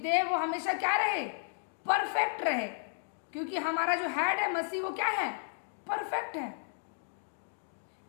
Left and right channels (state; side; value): silent; right; digital silence